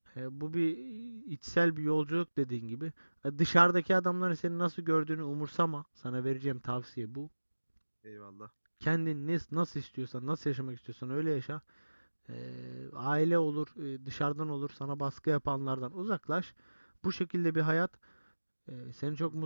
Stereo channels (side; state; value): both; inverted; correlation -1.00